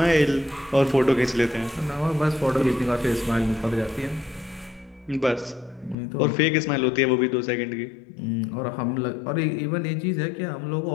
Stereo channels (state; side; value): drops out; right; at 6.0 s